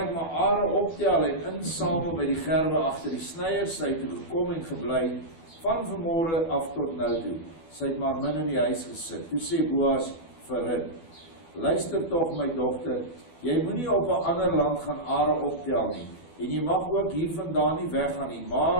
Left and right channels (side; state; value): right; late; 12 ms